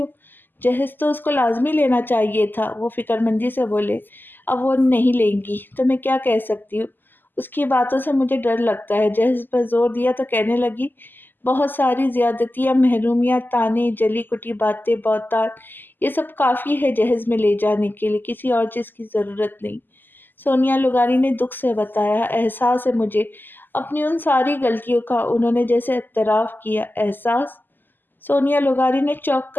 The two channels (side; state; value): right; late; 0.091 ms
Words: جہیز تو اس کو لازمی لینا چاہیے تھا، وہ فکر مندی سے بولے۔ اب وہ نہیں لیں گی تو میں کیا کہہ سکتی ہوں؟ اس کی باتوں سے مجھے ڈر لگتا ہے۔ جہیز پر زور دیا تو کہنے لگی، بہت ساری زیادتیاں، محرومیاں، تانے، جلی کٹی باتیں، بہتان، یہ سب کافی ہے جہیز میں لے جانے کے لیے، کسی اور چیز کی ضرورت نہیں۔ سونیا لغاری نے دکھ سے بتایا۔ احساس ہے مجھے اپنی ان ساری غلطیوں کا، انہوں نے جیسے اعتراف کیا۔ احساس؟ سونیا لغاری نے چونک